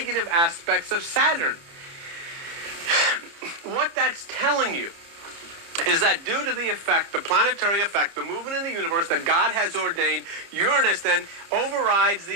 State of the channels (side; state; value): left; late; 30 ms